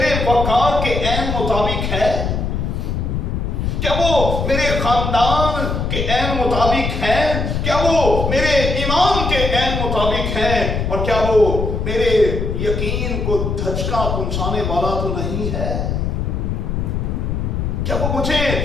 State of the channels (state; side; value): noise; left; rumble, 1 dB below the sound